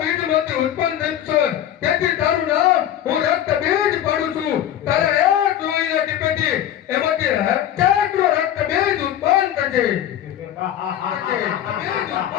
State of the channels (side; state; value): right; quieter; 11.3 dB